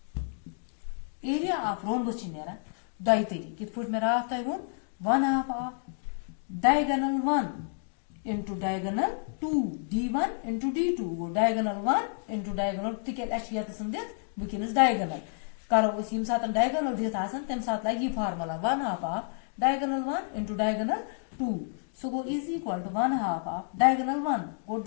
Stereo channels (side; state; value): right; silent; 58 dB below the other